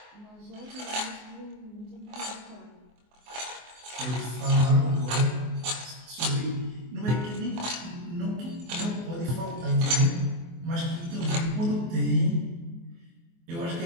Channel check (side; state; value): left; late; 24 ms